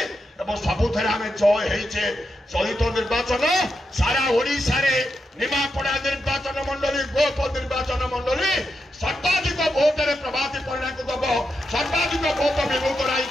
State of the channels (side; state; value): both; normal; correlation 0.86